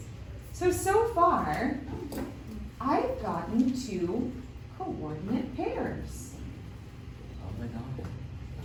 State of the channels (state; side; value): identical; both; correlation 1.00